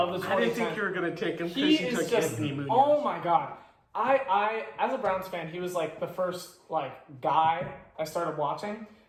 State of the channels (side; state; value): both; identical; correlation 1.00